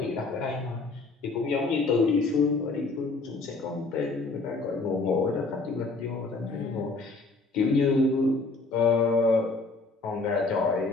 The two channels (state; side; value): quieter; right; 3.6 dB